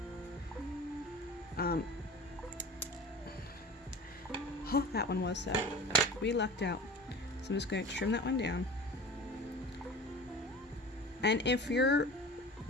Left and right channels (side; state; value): both; normal; correlation 0.37